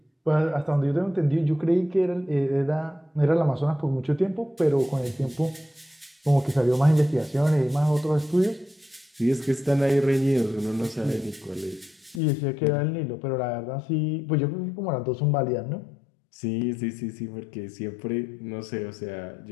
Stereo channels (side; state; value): right; drops out; at 12.2 s